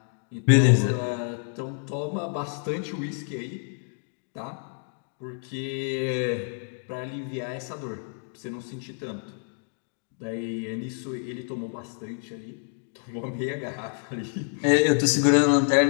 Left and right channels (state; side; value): silent; right; 60 dB below the other